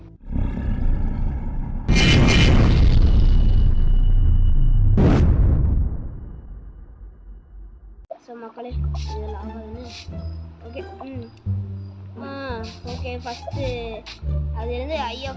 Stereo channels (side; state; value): both; identical; correlation 1.00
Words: ஸோ மக்களே, இதில் ஆகாதுன்னு ஓகே ஃபஸ்ட்டு அதுலேருந்து ஐ